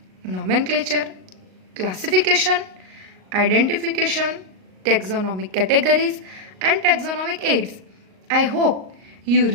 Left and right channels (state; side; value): late; left; 38 ms